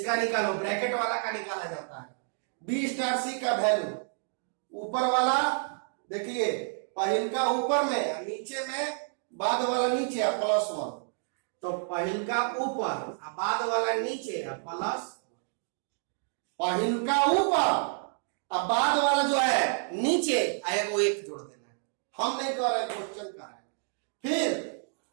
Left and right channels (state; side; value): silent; left; 58 dB below the other